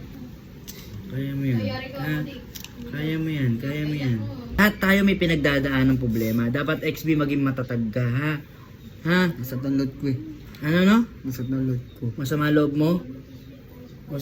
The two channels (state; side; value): identical; both; correlation 1.00